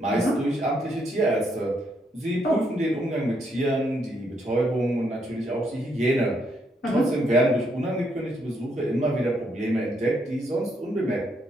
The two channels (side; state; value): both; normal; correlation 0.75